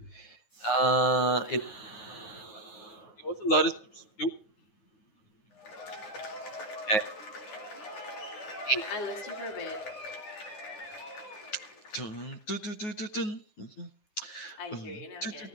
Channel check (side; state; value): right; late; 9.5 ms